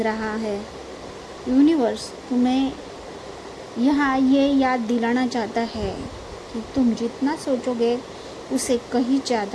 रहा है। यूनिवर्स तुम्हें यहाँ ये याद दिलाना चाहता है कि तुम जितना सोचोगे उससे कहीं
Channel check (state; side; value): identical; both; correlation 1.00